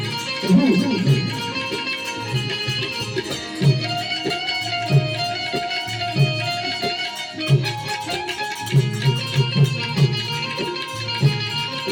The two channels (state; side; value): identical; both; correlation 1.00